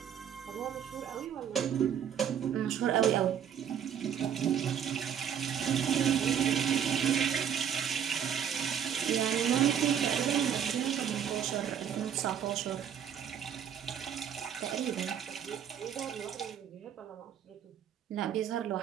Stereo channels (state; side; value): quieter; left; 8.7 dB